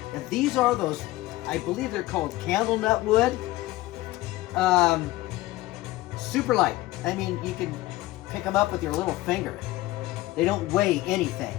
And these are those, I believe they're called Candelnut wood. Super light. I mean, you can pick them up with your little finger. They don't weigh anything.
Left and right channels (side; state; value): right; quieter; 18.0 dB